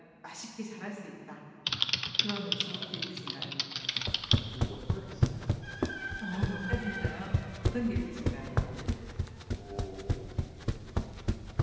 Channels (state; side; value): identical; both; correlation 1.00